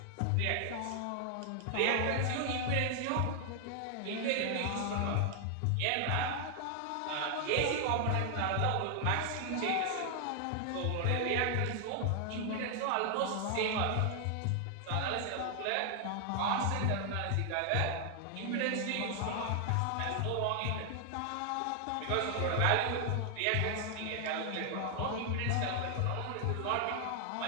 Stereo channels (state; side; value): different; both; correlation 0.00